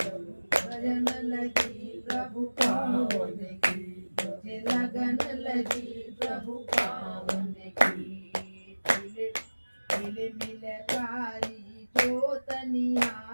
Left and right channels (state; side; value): inverted; both; correlation -1.00